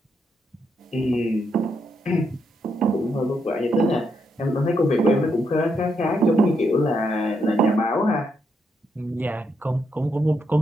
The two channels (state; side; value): normal; both; correlation 0.79